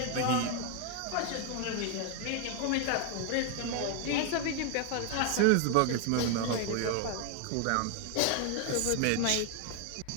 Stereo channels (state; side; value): different; both; correlation 0.01